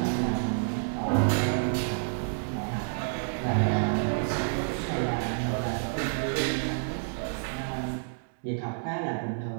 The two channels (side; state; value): left; silent; digital silence